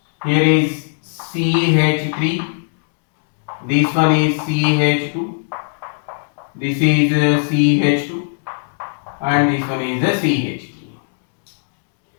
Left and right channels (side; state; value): right; silent; digital silence